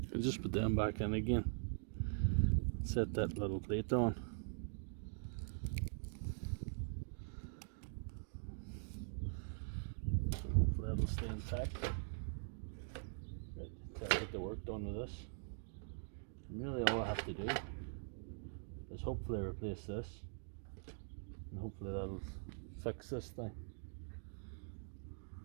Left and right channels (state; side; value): silent; left; digital silence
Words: I'll just put them back in again. Set that little plate on. Hopefully that'll stay intact. Right, till I get the work done with this. And really all I have to do is hopefully replace this, and hopefully that'll fix this thing.